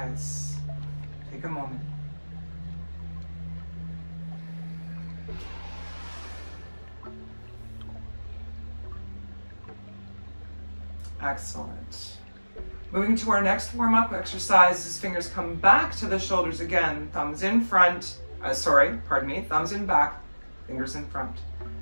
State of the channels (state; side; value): inverted; both; correlation -1.00